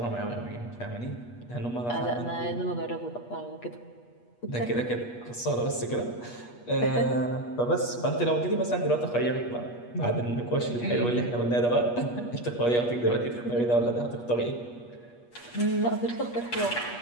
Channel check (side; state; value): right; late; 8.3 ms